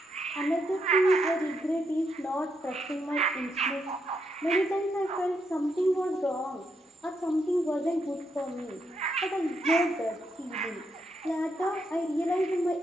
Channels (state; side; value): normal; both; correlation 0.79